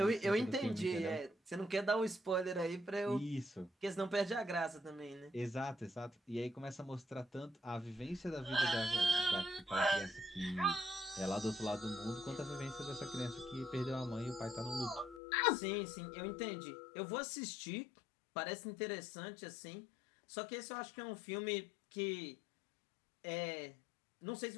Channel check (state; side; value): drops out; right; at 15.2 s